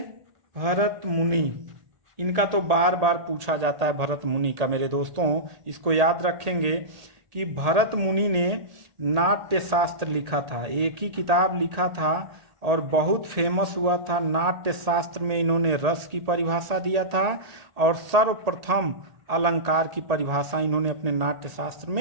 भरत मुनि, इनका तो बार बार पूछा जाता है भरत मुनि का मेरे दोस्तों। इसको याद रखेंगे कि भरत मुनि ने नाट्य शास्त्र लिखा था, एक ही किताब लिखा था और बहुत फेमस हुआ था। नाट्य शास्त्र में इन्होंने रस की परिभाषा दिया था और सर्वप्रथम अलंकार की परिभाषा इन्होंने अपने नाट्य शास्त्र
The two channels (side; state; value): left; late; 1.8 ms